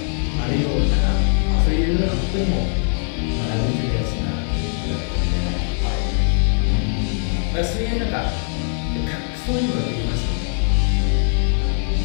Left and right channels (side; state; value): right; silent; 62 dB below the other